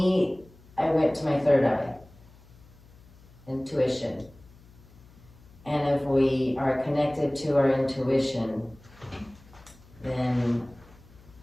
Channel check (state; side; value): noise; left; hum, 25 dB below the sound